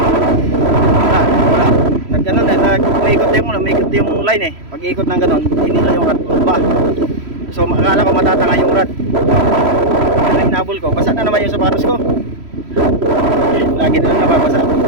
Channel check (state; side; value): late; left; 3.1 ms